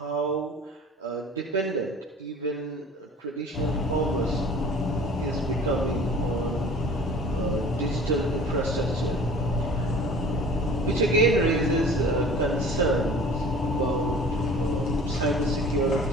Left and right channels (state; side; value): normal; both; correlation 0.45